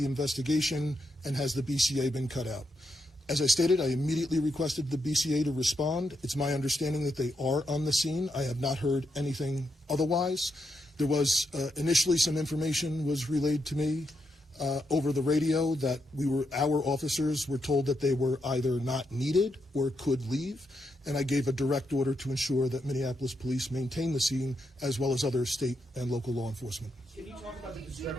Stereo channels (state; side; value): normal; both; correlation 0.82